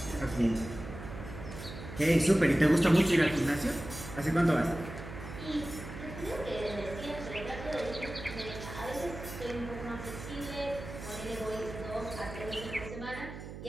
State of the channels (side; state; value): right; noise; hum, 11 dB below the sound